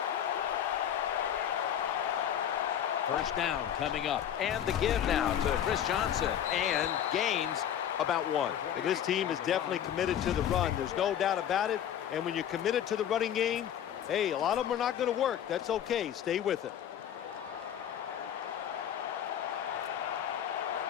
First down coming up. And the give now to Chris Johnson. And gains about 1. Well, this team is definitely committed to the run. There's no doubt about it. And when you're committed to the running game, hey, a lot of them are not going to work. That's okay. Stay with it.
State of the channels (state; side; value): quieter; right; 9.9 dB